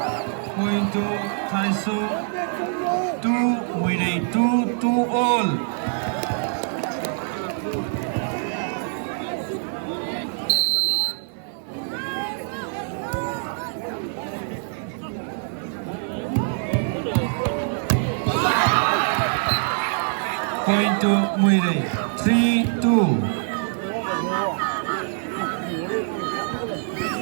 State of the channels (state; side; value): silent; left; 62 dB below the other